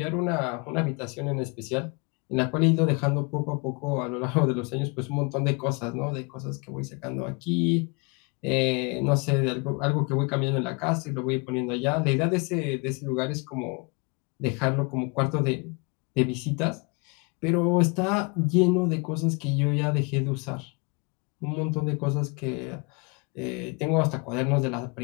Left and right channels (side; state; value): right; quieter; 30.7 dB